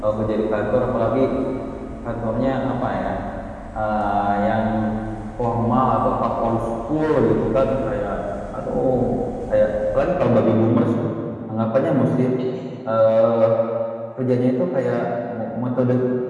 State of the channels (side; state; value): both; identical; correlation 1.00